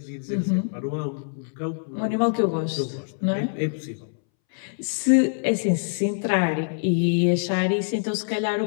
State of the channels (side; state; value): right; silent; 62 dB below the other